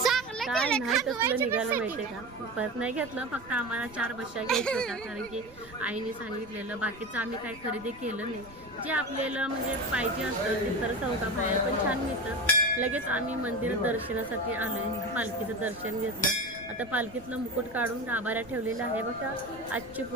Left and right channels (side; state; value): right; noise; rumble, 21 dB below the sound